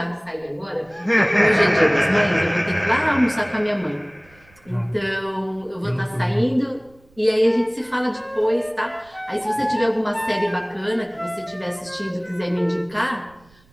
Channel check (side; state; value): right; noise; rumble, 30 dB below the sound